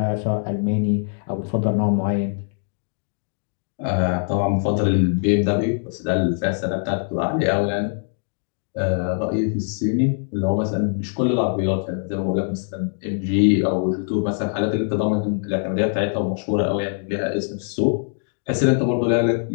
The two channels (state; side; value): silent; right; 59 dB below the other